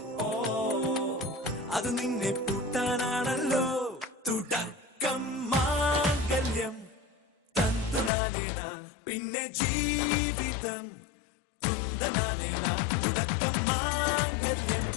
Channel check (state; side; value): drops out; right; at 8.1 s